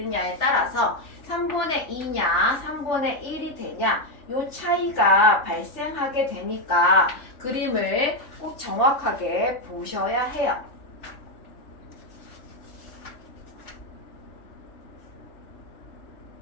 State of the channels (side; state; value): right; late; 3.4 ms